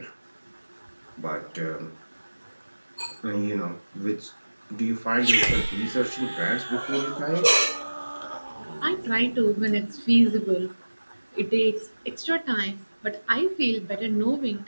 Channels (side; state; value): both; inverted; correlation -1.00